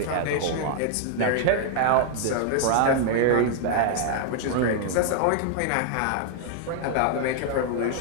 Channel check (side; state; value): both; different; correlation -0.01